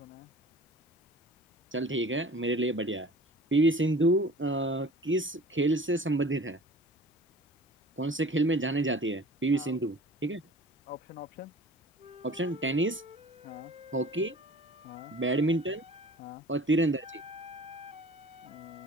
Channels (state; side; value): normal; both; correlation 0.44